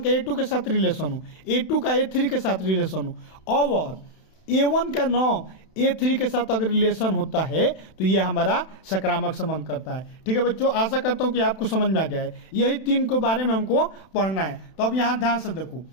का A2 के साथ रिलेशन हो, A2 का A3 के साथ रिलेशन हो, और A1 का 9 A3 के साथ अगर रिलेशन होता है तो ये हमारा सकारात्मक संबंध करता है। ठीक है बच्चों, आशा करता हूँ कि आपको समझ में आ गया है। यही 3 के बारे में हमको पढ़ना है। तो अब यहाँ ध्यान से देखो,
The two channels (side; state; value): right; late; 32 ms